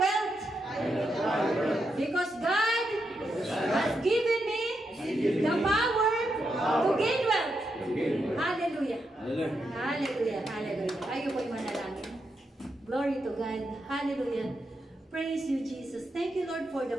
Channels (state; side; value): normal; both; correlation 0.83